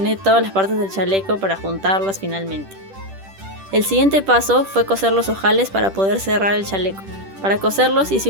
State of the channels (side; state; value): left; late; 10 ms